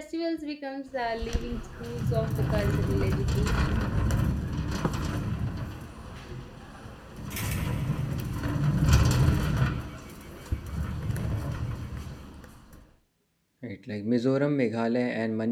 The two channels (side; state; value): both; identical; correlation 1.00